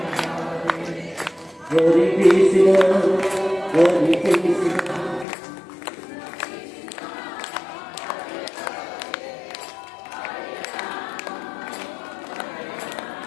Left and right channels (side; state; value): right; drops out; at 5.2 s